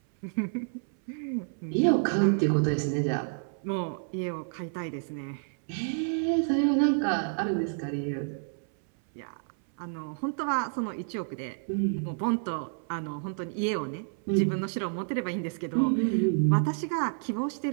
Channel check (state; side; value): silent; left; 58 dB below the other